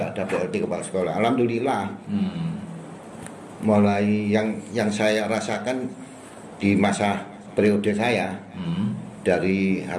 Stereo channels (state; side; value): identical; both; correlation 1.00